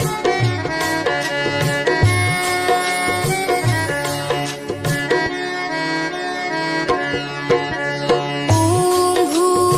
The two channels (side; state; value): both; identical; correlation 1.00